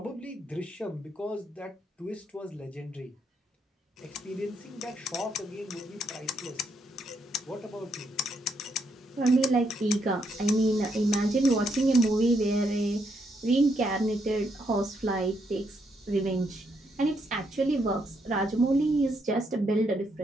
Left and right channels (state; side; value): normal; both; correlation 0.76